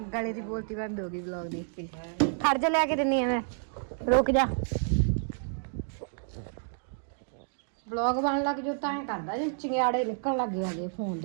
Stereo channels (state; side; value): silent; left; digital silence